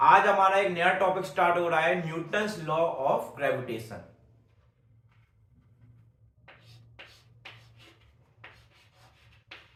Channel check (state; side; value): identical; both; correlation 1.00